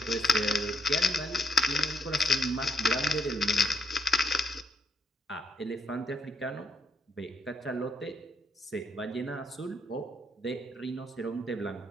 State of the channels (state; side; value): normal; both; correlation 0.72